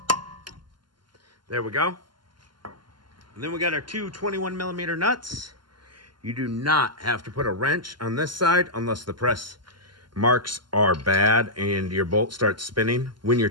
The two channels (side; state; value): left; late; 0.71 ms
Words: There we go. And then we got our two 21 millimeter nuts. You do not have to put a wrench on this side unless the press marks are bad and your bolt starts spinning when you're